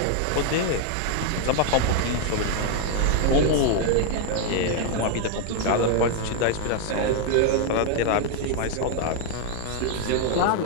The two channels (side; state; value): both; different; correlation 0.00